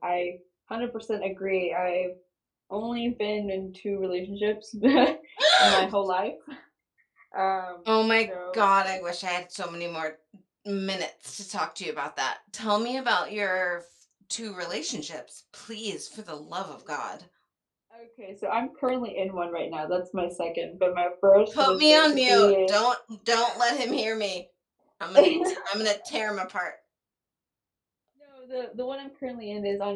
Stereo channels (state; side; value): identical; both; correlation 1.00